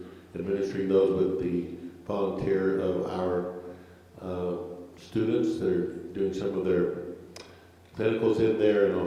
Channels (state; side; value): identical; both; correlation 1.00